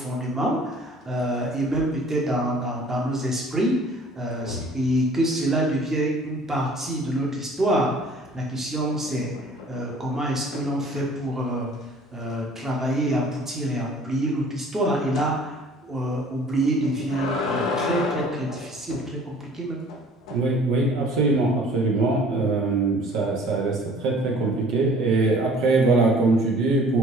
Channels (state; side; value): normal; both; correlation 0.52